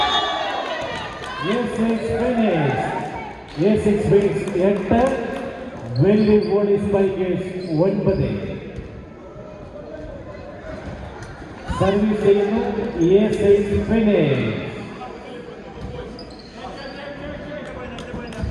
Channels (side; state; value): both; identical; correlation 1.00